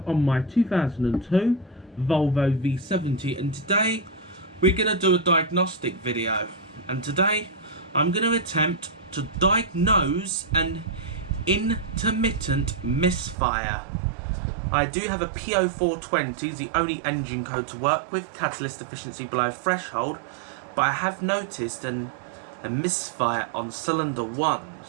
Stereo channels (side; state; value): left; drops out; at 13.4 s